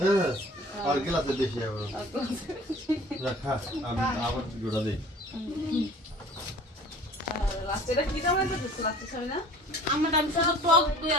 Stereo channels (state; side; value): normal; both; correlation 0.47